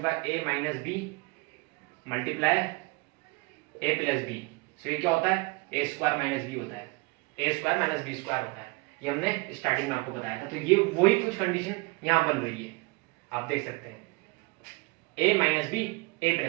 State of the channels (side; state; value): left; quieter; 27.6 dB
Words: है, ए माइनस बी मल्टीप्लाई ए प्लस बी। सो ये क्या होता है, ए स्क्वायर माइनस बी होता है, ए स्क्वायर माइनस बी स्क्वायर होता है। ये हमने स्टार्टिंग में आपको बताया था। तो ये वही कुछ कंडीशन यहां बन रही है, आप देख सकते हैं, ए माइनस बी ए